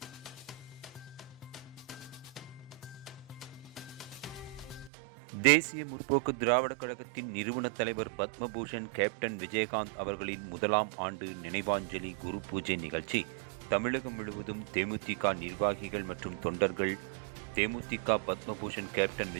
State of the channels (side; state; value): left; drops out; at 4.9 s